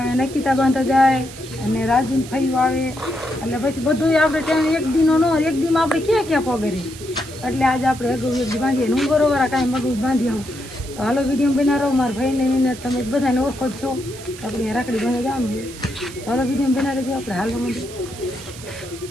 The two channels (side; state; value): right; noise; hiss, 15 dB below the sound